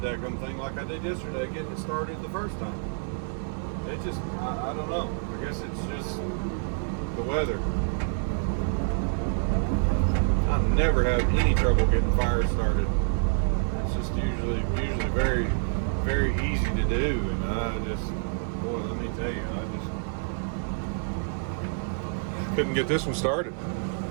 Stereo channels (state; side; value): silent; left; digital silence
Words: daggum thing like I did yesterday, getting it started the first time. It just, I don't know. I guess it's just the weather. I never have any trouble getting fires started. It's just usually very, very easy to do. And boy, let me tell you, I just couldn't get this one started.